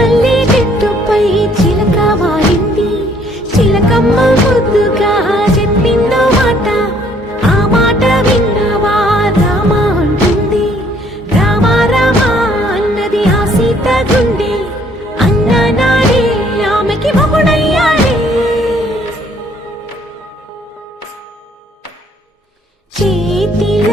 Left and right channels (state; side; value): normal; both; correlation 0.63